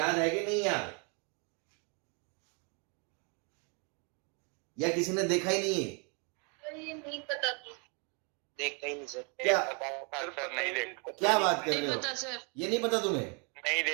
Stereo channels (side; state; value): left; quieter; 35.5 dB